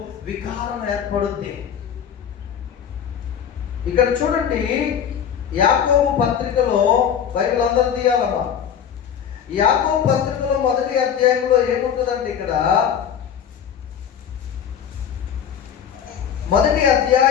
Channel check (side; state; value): right; quieter; 8.4 dB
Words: వికారం ఏర్పడుద్ది. ఇక్కడ చూడండి, యాకోబు పత్రికలో, బైబిల్ అందరూ తీయాలమ్మా, యాకోబు పత్రికలో 1వ అధ్యాయంలో ఏముంటుందండి? ఇక్కడ 1వ